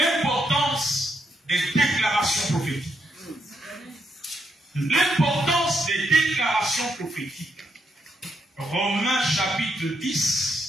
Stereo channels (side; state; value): both; normal; correlation 0.78